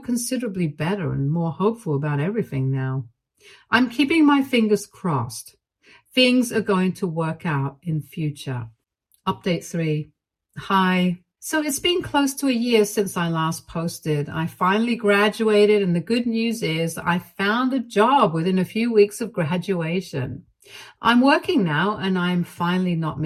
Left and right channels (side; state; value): both; identical; correlation 1.00